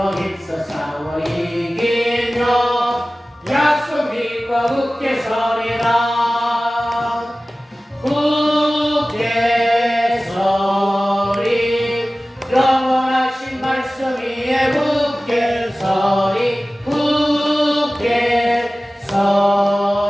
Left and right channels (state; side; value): normal; both; correlation 0.97